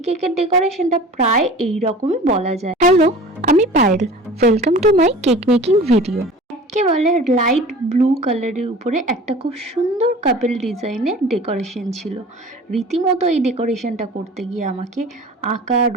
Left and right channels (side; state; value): both; normal; correlation 0.41